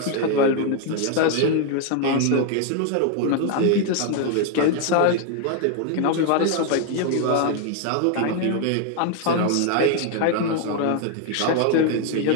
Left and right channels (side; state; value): both; different; correlation 0.01